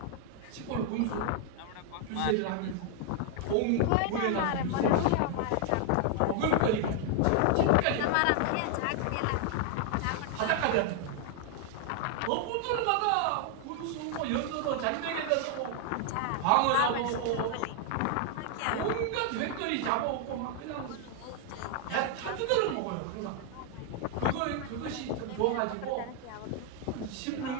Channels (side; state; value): both; different; correlation 0.00